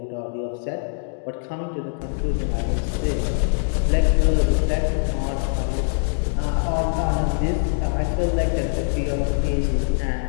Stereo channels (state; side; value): silent; right; digital silence